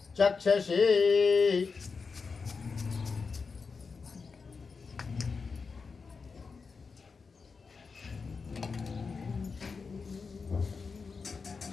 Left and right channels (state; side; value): quieter; right; 4.9 dB